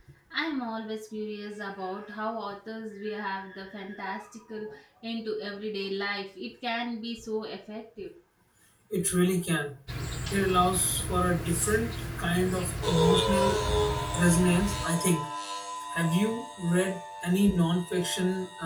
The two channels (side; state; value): both; identical; correlation 1.00